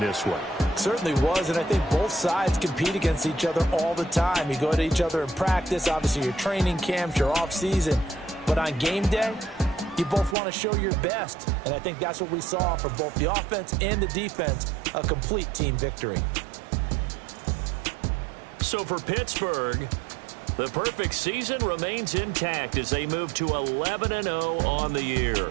this one. Certainly was, and I think both sides compete against each other all the time. You go to each other in practice, obviously your training camps, your off-season. But on game day, you both want to show your best. And I think that's what we saw from both the offense and the defense, a complete team victory. So for Pittsburgh, the perfect season remains intact as they move to 11-0 on the year.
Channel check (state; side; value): drops out; left; at 10.4 s